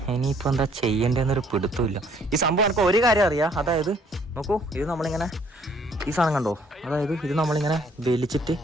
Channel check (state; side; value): normal; both; correlation 0.62